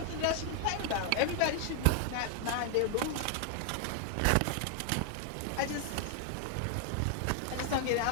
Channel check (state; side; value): different; both; correlation 0.00